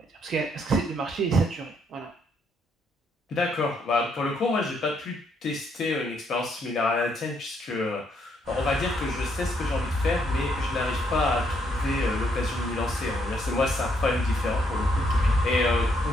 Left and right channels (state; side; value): normal; both; correlation 0.72